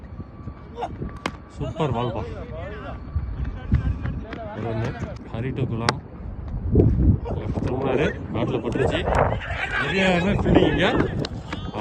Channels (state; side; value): identical; both; correlation 1.00